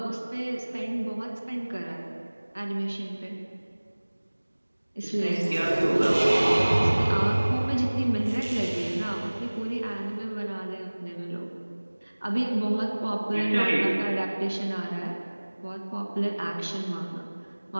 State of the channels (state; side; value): inverted; both; correlation -1.00